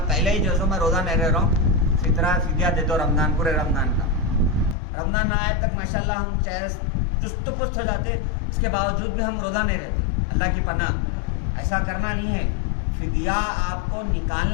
पहले ही जो मैं रोज़ा नहीं रह रहा हूँ, फ़ितरा फ़िदिया दे दो रमज़ान, पूरे रमज़ान का। रमज़ान ना आए तक माशाल्लाह हम चाहे चुस्त पुस्त हो जाते, इसके बावजूद भी हम रोज़ा नहीं रहते। अल्लाह की पनाह, ऐसा करना नहीं है। फ़िदिया आपको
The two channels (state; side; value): drops out; right; at 4.8 s